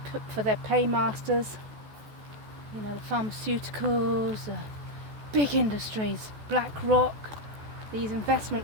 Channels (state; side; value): late; left; 14 ms